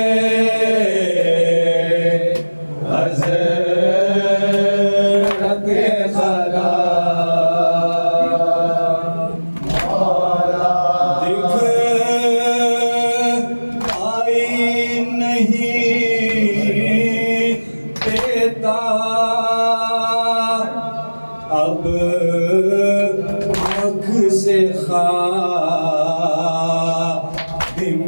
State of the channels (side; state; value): both; inverted; correlation -1.00